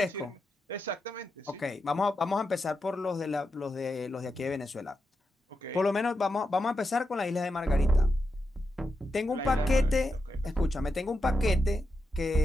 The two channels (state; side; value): normal; both; correlation 0.87